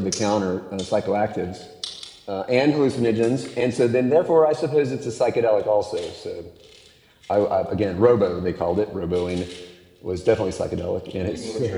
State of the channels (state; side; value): identical; both; correlation 1.00